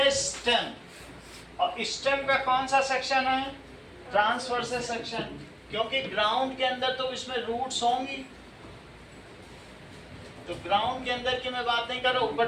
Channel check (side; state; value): both; identical; correlation 1.00